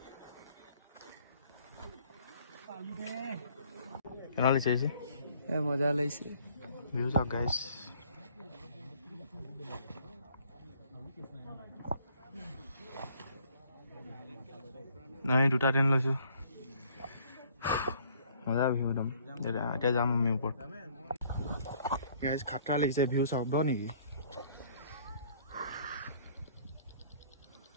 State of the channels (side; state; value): both; inverted; correlation -0.60